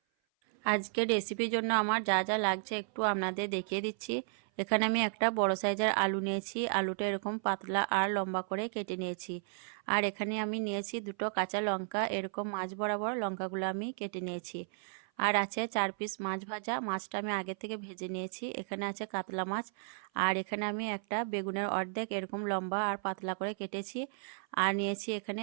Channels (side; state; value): left; silent; 55 dB below the other